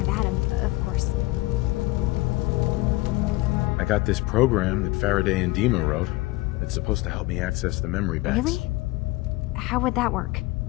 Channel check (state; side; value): quieter; right; 20.4 dB